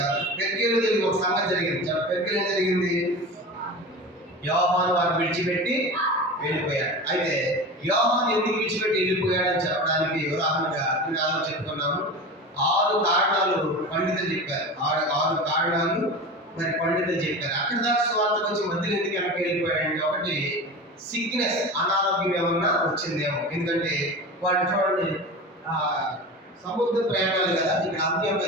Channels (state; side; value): normal; both; correlation 0.30